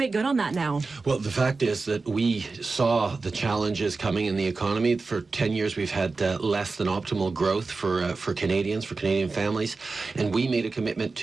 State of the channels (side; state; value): left; quieter; 4.0 dB